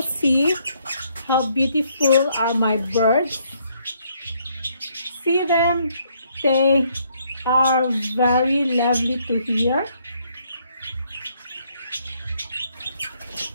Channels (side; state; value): both; inverted; correlation -0.70